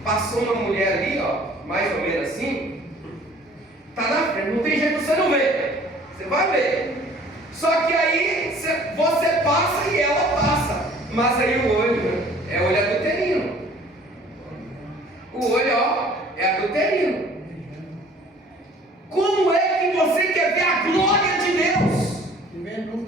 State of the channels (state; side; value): normal; both; correlation 0.52